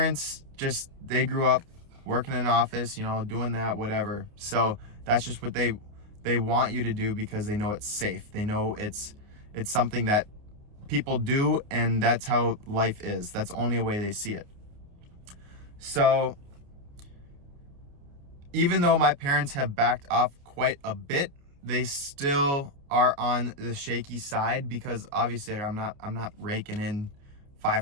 they grew up working in an office, doing that, whatever. So that's just what they want you to do because they know it's safe. They know it's something that people do, and that's how life is. That's the only way they see it. So even though my parents have backed off quite a bit, they still are on the shaky side because obviously I'm not raking in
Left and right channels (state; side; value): late; left; 29 ms